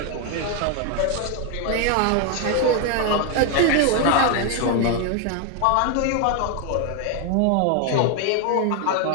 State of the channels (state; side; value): different; both; correlation 0.01